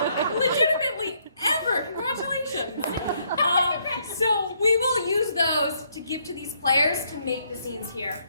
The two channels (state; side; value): inverted; both; correlation -0.71